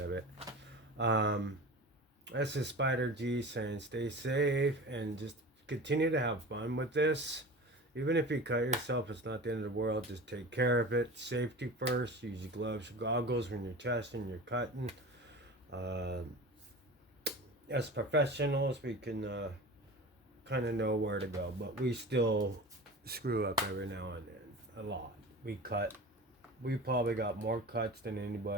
it. This is Spider G saying stay safe and just continue to have fun with this. Even if you cut yourself, it's not the end of the world. Just take care of it. Safety first. Use your gloves, goggles when you're testing, you're cutting. As professionals, we can kind of know where to go, but we still screw up every now and then. A lot. We cut. We probably got more cuts than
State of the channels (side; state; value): both; normal; correlation 0.34